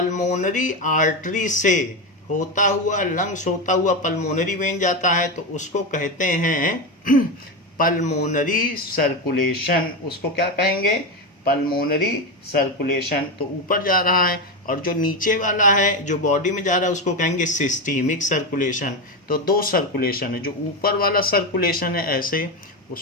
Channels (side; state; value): both; normal; correlation 0.15